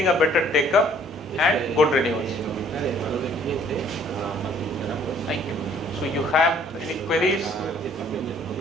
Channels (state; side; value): normal; both; correlation 0.58